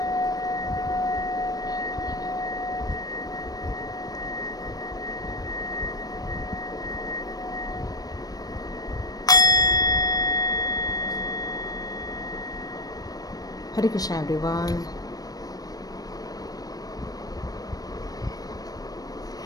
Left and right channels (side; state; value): right; late; 0.18 ms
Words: हरे कृष्णा एवरीवन।